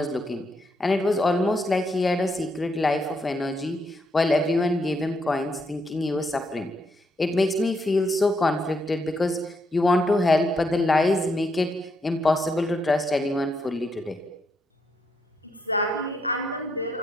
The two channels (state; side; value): normal; both; correlation 0.77